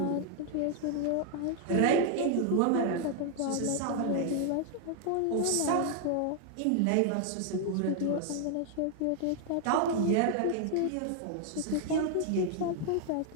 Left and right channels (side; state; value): both; different; correlation 0.00